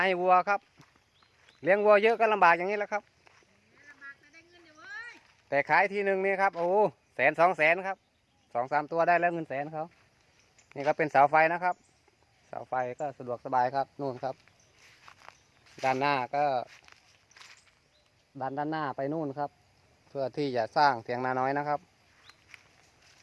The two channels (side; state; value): both; identical; correlation 1.00